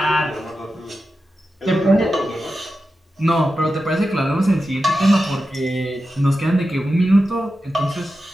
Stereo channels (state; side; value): normal; both; correlation 0.91